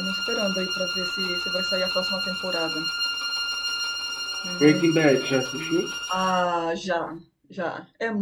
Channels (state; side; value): identical; both; correlation 1.00